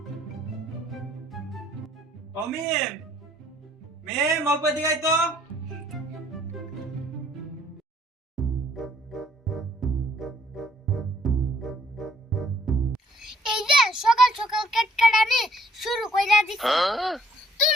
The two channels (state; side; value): normal; both; correlation 0.63